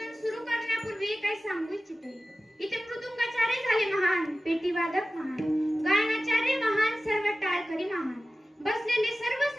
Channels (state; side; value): normal; both; correlation 0.96